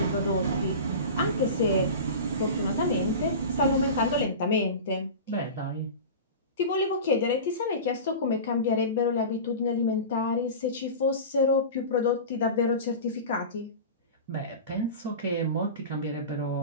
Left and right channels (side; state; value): both; inverted; correlation -0.30